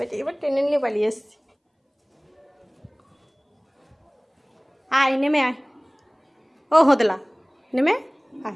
এবার টেনে নিয়ে পালিয়ে এসছি। আয়, নেমে আয়। ও হোদলা, নেমে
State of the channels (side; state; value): both; identical; correlation 1.00